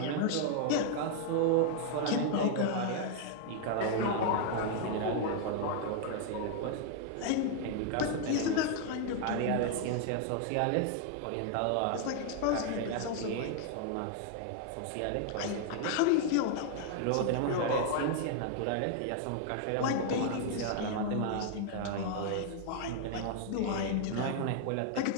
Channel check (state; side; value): different; both; correlation 0.00